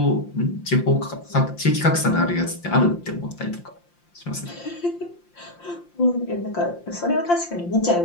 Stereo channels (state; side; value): late; right; 5.8 ms